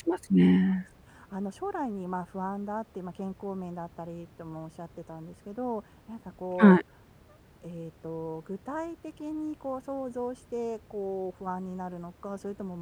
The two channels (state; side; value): identical; both; correlation 1.00